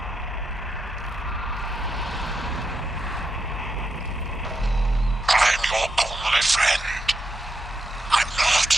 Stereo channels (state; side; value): normal; both; correlation 0.84